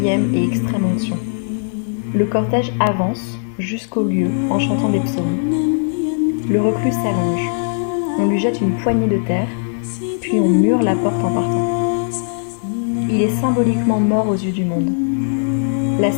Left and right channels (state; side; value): silent; right; digital silence